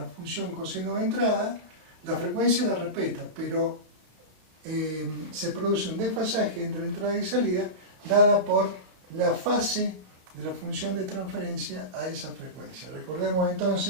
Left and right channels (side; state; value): left; late; 32 ms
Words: función coseno de entrada. La frecuencia la respeta, pero se produce un desfasaje entre entrada y salida dada por la fase de la función de transferencia a esa frecuencia. Recordemos